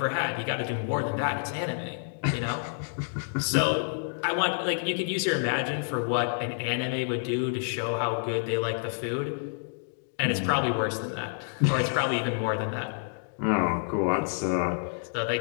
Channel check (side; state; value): right; silent; digital silence